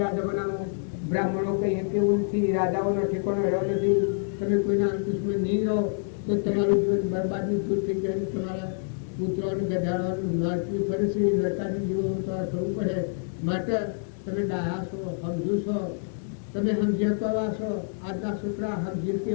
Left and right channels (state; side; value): silent; right; digital silence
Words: આ જમાનામાં બ્રાહ્મણો કઈ કેવું નથી, રાજાઓનો ઠેકાણો રહ્યો નથી. તમે કોઈના અંકુશમાં નહીં રહો તો તમારું જીવન બરબાદની છૂટ થઈ જાય. તમારા પુત્રોનું ગધાડવાનું નડતું ફરે છે, નડતાનું જીવન તમારે થવું પડે. માટે તમે ડાયા છો, સમજુ છો, તમે સમજ્યા છો. આજના છોકરા સમજી